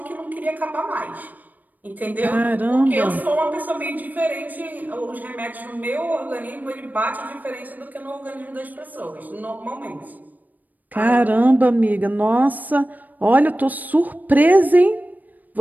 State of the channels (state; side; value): late; left; 0.083 ms